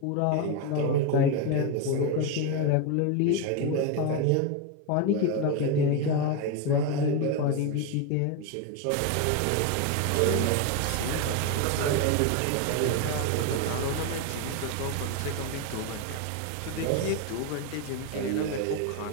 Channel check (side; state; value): both; different; correlation 0.02